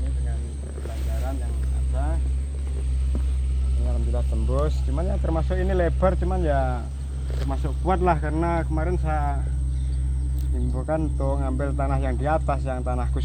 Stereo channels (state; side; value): identical; both; correlation 1.00